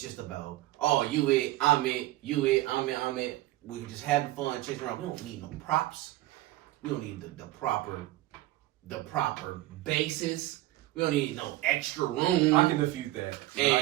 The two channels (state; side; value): quieter; left; 16.9 dB